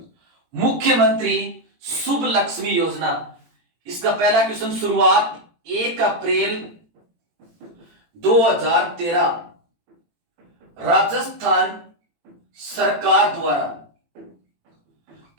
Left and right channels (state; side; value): late; left; 18 ms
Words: मुख्यमंत्री शुभ लक्ष्मी योजना, इसका पहला क्वेश्चन शुरुआत 1 अप्रैल 2013 राजस्थान सरकार द्वारा।